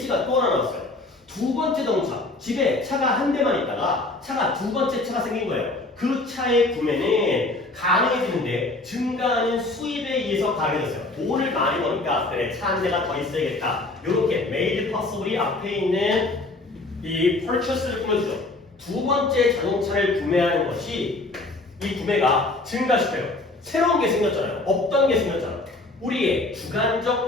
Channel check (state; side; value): quieter; right; 3.0 dB